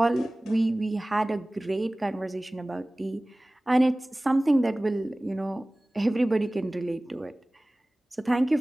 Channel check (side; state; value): both; normal; correlation 0.98